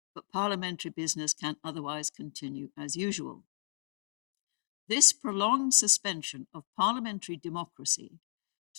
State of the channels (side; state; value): right; silent; digital silence